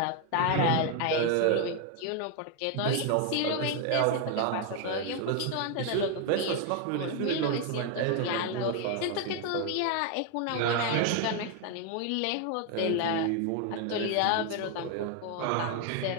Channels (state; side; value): different; both; correlation 0.01